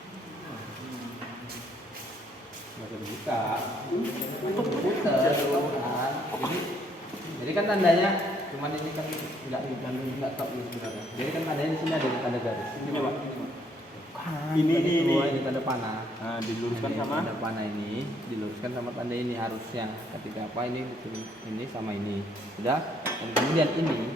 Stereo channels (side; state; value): both; normal; correlation 0.68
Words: Masih dibuka. Jadi kan tandanya cuman ini kan enggak top ini sebenarnya. Jadi kan tandanya di sini ada tanda garis. Ini Pak. Ini tanda panah. Nah, diluruskan Ini sama tanda panah ini diluruskan sama tanda ini harusnya. Ketika apa ini sama ini. Sudah. Dan kemudian